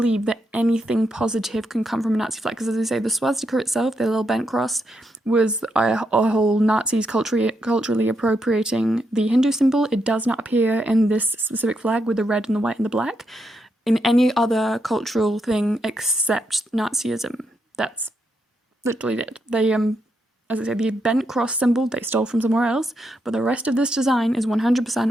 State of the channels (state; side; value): normal; both; correlation 0.81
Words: that anything positive can come from a Nazi flag. Because as I say, the swastika itself, the little bent cross, was a whole Nazis culturally appropriating the Hindu symbol. It does not appear in this specific flag with the red and the white and the black in any other cultural thing except Nazism. That's literally it. They as I say, the bent cross symbol they stole from somewhere else, but the rest of this design is 100%